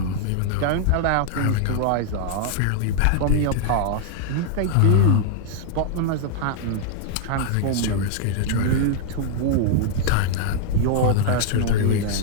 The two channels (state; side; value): different; both; correlation 0.00